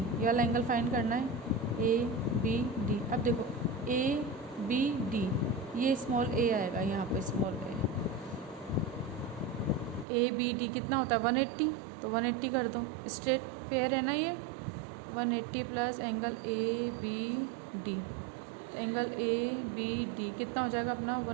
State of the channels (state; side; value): drops out; left; at 10.1 s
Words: वाला एंगल फाइंड करना है, ए बी डी। अब देखो ए बी डी, ये स्मॉल ए आएगा यहाँ पे, स्मॉल ए बी डी कितना होता है 180, तो 180 कर दो, स्ट्रेट पेयर है ना ये, 180 plus angle A B D, angle A B D कितना हो जाएगा अपना